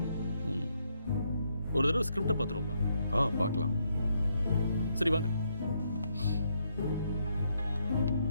ஒரு தடவை ஸ்கிரிப்டை பார்த்துருவோமா? பார்க்கலாம். சரி வாங்க.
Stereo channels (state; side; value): inverted; both; correlation -0.76